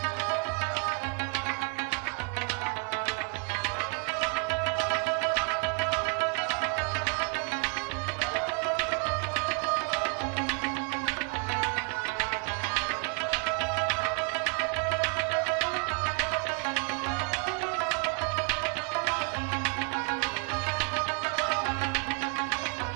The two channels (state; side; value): quieter; left; 37.3 dB